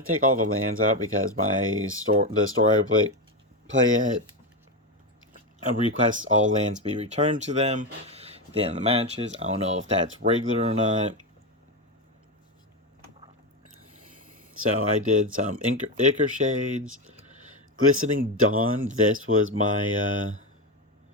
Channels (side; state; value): both; normal; correlation 0.13